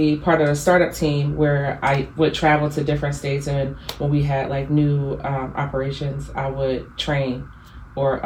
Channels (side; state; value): both; identical; correlation 1.00